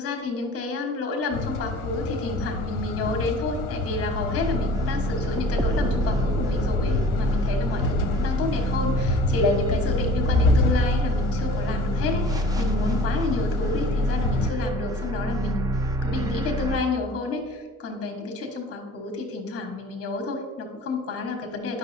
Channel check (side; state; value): both; normal; correlation 0.45